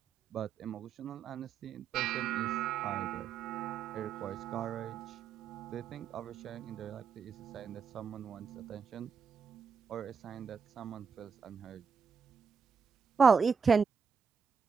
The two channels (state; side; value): quieter; left; 6.0 dB